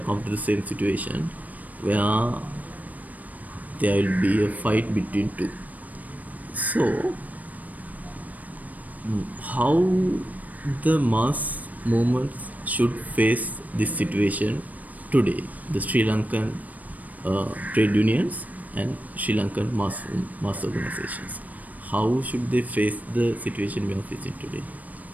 come to the same situation where there will be a fight between two. So, how the mass movements should face this situation today? The Sri Lankan trade unions and Sri Lankan mass organizations. How should they face the situation we are facing today?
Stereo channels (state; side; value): late; left; 0.075 ms